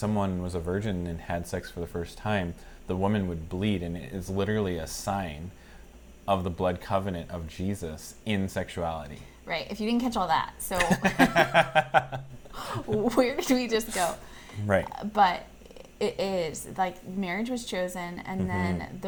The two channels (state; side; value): identical; both; correlation 1.00